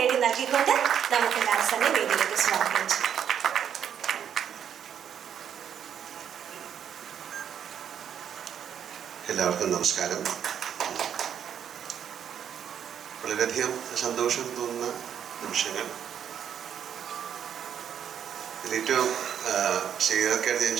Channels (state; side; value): quieter; left; 8.8 dB